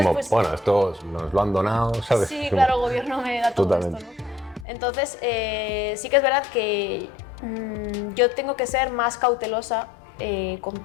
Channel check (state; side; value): drops out; right; at 4.7 s